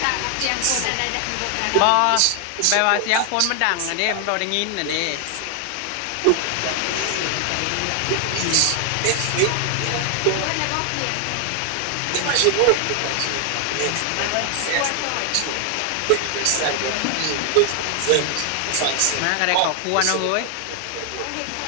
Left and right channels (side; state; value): both; different; correlation 0.00